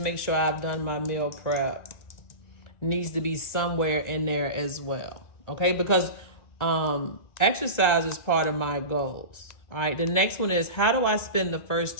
sure I've done my meal prep, needs to be somewhere in there as well. Okay, because exercise is part of my goals. All right, the next one is, how do I spend the first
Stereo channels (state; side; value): late; right; 1.9 ms